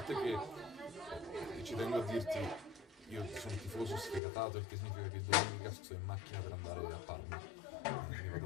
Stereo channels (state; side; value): drops out; right; at 4.2 s